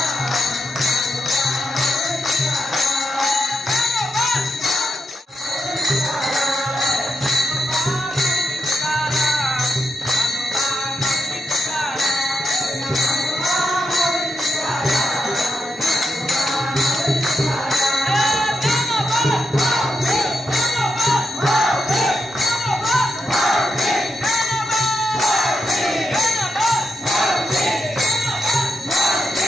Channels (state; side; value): normal; both; correlation 0.85